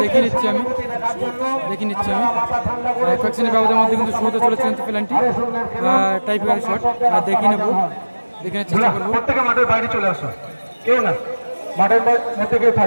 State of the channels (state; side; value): inverted; both; correlation -1.00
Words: দেখে নিচ্ছি আমি কয়েকজনের ব্যবধানের মধ্যে কিন্তু শুরুতে চলেছে কিন্তু প্ল্যানটি টাইফিকারের শট দেখে নেবো, দেখে নেওয়ার চেষ্টা করবো। মাঠের বাইরে চলে আসো, কেউ না মাঠের মধ্যে কেউ